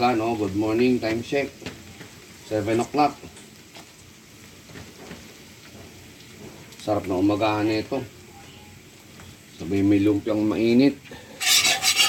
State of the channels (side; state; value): both; identical; correlation 1.00